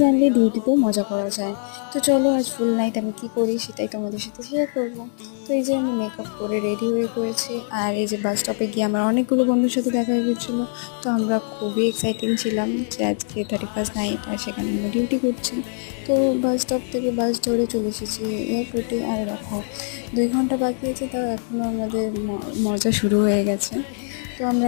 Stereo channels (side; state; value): right; silent; digital silence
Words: জানলে ডিউটিতেও মজা করা যায়। তো চলো আজ ফুল নাইট আমি কী করি সেটাই তোমাদের সাথে শেয়ার করবো। তো এই যে আমি মেকআপ করে রেডি হয়ে পড়েছি, আর এই যে বাস স্টপে গিয়ে আমার অনেকগুলো বন্ধুর সাথে দেখা হয়ে গেছিলো। তো আমরা খুবই এক্সাইটিং ছিলাম যে আজকে 31st নাইট, আর সেখানে আমরা ডিউটি করছি। তো বাস স্টপ থেকে বাস ধরে চলে এসেছি এয়ারপোর্টে। আর দেখো 2 ঘন্টা বাকি আছে, তাও এখনও আমাদের মজা শুরু হয়ে গেছে। তো আমরা